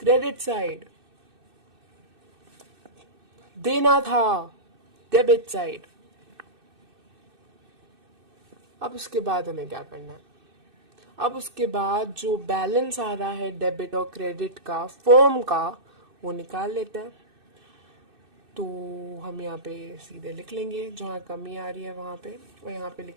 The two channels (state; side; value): late; left; 2.6 ms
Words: साइड, देना था डेबिट साइड। अब उसके बाद हमें क्या करना है, अब उसके बाद जो बैलेंस आ रहा है डेबिट और क्रेडिट का फर्म का, वो निकाल लेते हैं। तो हम यहाँ पे सीधे लिख लेंगे जहाँ कमी आ रही है वहाँ पे, और यहाँ पे